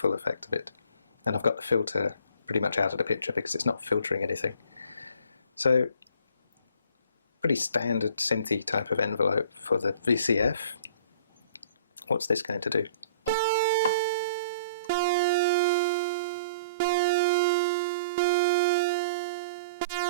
effect of it. And I've got the filter pretty much out of the picture because it's not filtering anything. So pretty standard synthy type of envelope for the VCF. What's this going to do?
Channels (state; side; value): inverted; both; correlation -0.52